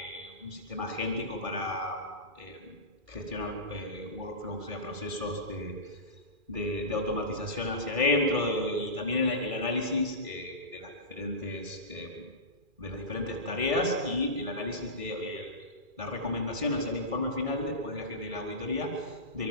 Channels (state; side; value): late; left; 2.4 ms